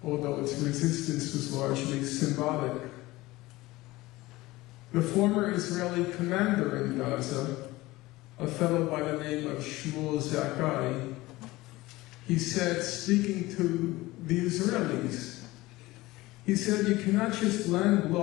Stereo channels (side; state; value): right; quieter; 19.3 dB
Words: although its resistance was largely symbolic. The former Israeli commander in Gaza, a fellow by the name of Shmuel Zakai, he said, speaking to the Israelis, he said, "You cannot just land